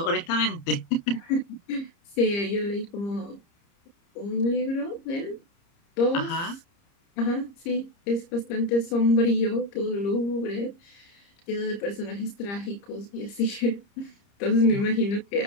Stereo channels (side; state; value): right; late; 30 ms